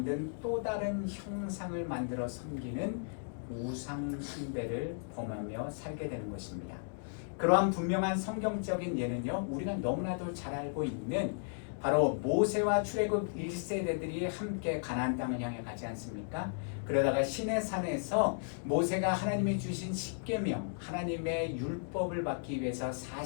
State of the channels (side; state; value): right; silent; digital silence